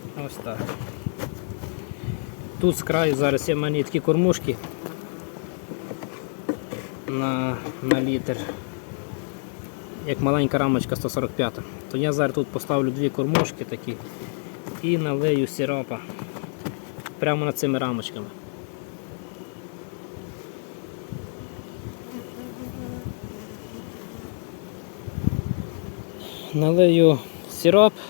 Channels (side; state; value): right; silent; 61 dB below the other